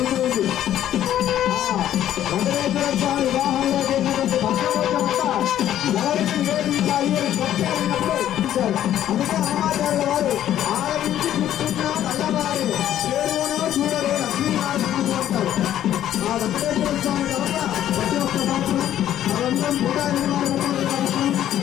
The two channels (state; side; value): quieter; right; 11.6 dB